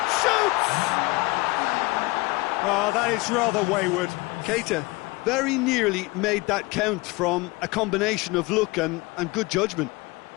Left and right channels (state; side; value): quieter; right; 23.5 dB